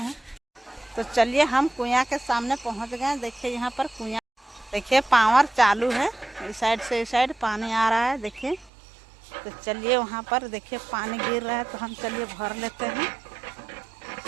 तो चलिए हम कुआं के सामने पहुंच गए। देखिए यहाँ पर कुआं, देखिए पावर चालू है, इस साइड से इस साइड पानी आ रहा है देखिए। तो चलिए वहाँ पर देखिए पानी गिर रहा है तो हम चलिए भर लेते हैं।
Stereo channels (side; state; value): left; drops out; at 8.7 s